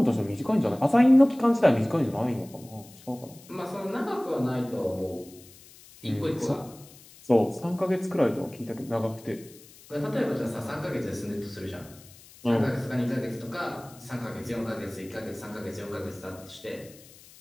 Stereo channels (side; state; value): left; noise; hiss, 22 dB below the sound